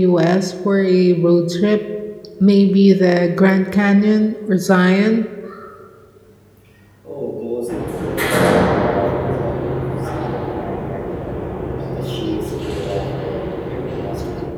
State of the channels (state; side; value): identical; both; correlation 1.00